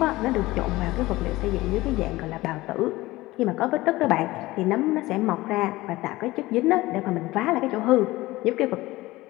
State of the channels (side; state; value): right; quieter; 18.9 dB